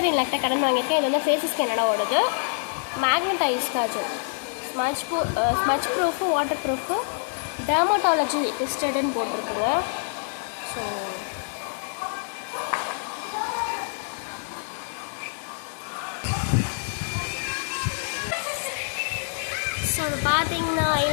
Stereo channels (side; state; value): right; silent; digital silence